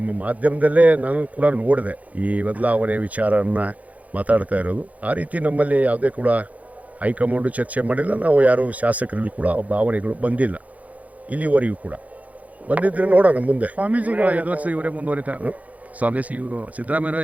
ಮಾಧ್ಯಮದಲ್ಲೇ ನಾನು ಕೂಡ ನೋಡಿದೆ ಈ ಬದಲಾವಣೆ ವಿಚಾರನ ಮಾತಾಡ್ತಾ ಇರೋದು. ಆ ರೀತಿ ನಮ್ಮಲ್ಲಿ ಯಾವುದೇ ಕೂಡ ಹೈಕಮಾಂಡು ಚರ್ಚೆ ಮಾಡಿಲ್ಲ. ನಾವು ಯಾರು ಶಾಸಕರಲ್ಲಿ ಕೂಡ ಭಾವನೆಗಳು ಬಂದಿಲ್ಲ ಇಲ್ಲಿವರೆಗೂ ಕೂಡ. ಬಂದಿದ್ರೆ ನೋಡೋಣ ಮುಂದೆ. ಸ್ವಾಮೀಜಿಗಳು 5 ವರ್ಷ ಇವರೇ ಮುಂದುವರಿತಾರೆ. ಸ್ವಾಮೀಜಿ ಇವರು ಸಿದ್ದರಾಮಯ್ಯ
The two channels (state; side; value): late; left; 0.072 ms